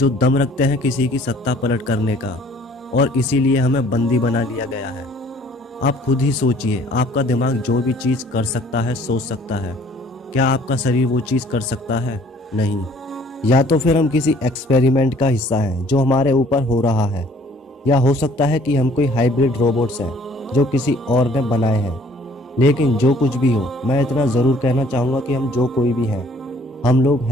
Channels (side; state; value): both; normal; correlation 0.57